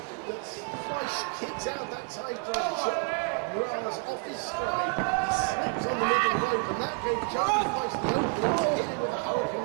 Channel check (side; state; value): left; quieter; 33.9 dB